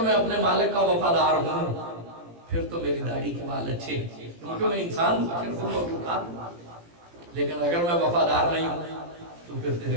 اپنے مالک کا وفادار ہوں پھر تو میری داڑھی کے بال اچھے ہیں، کیونکہ میں انسان ہوں، لیکن اگر میں وفادار نہیں ہوں تو پھر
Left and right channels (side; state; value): left; late; 17 ms